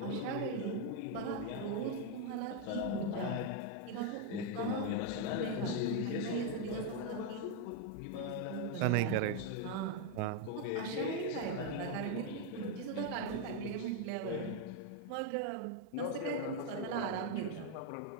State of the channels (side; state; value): both; different; correlation 0.01